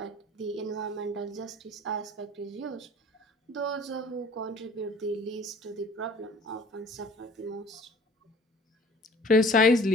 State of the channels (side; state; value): both; normal; correlation 0.50